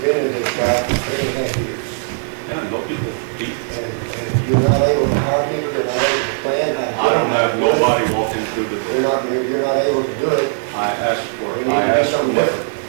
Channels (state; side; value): silent; left; digital silence